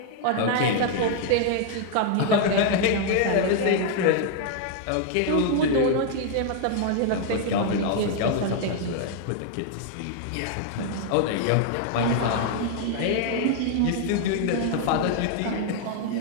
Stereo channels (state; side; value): different; both; correlation 0.00